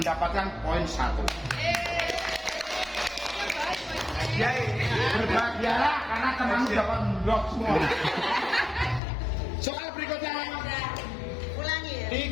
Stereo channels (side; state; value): right; drops out; at 9.0 s